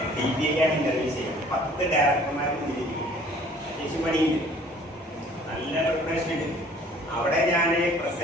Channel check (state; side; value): normal; both; correlation 0.54